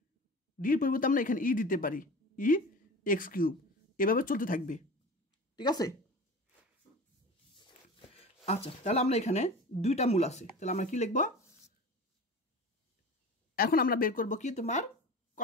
ডির পরিবর্তে আমরা এখানে ই দিতে পারি, ই এক্স কিউব, এভাবে চলতে থাকবে। ঠিক আছে, আচ্ছা, তাহলে আমরা এখানে দুইটা মূল আছে, তাহলে আমরা কি লিখব? এখন আমরা বের করব কি, তোমার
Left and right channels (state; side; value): normal; both; correlation 0.35